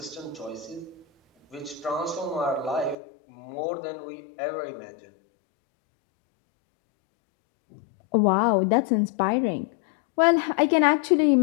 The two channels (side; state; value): right; drops out; at 3.0 s